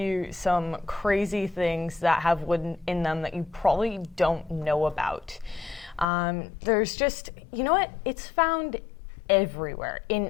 some crazy things that have wood in them that you probably don't know about. There's just, you know what, it's found everywhere, in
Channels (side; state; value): right; drops out; at 6.1 s